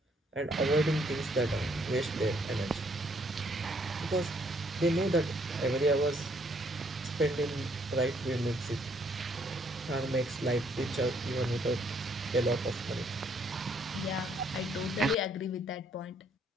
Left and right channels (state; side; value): normal; both; correlation 0.68